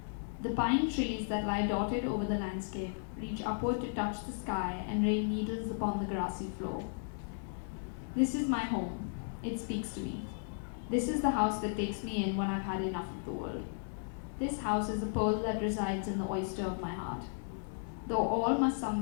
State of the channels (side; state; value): right; silent; digital silence